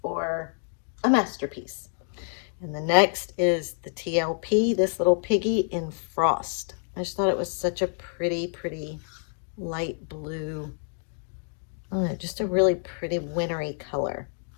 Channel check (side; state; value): right; silent; 60 dB below the other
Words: or a masterpiece. And the next is the TLP, this little piggy in Frost. I just thought it was such a pretty light blue. I don't know, just a really pretty wintry color.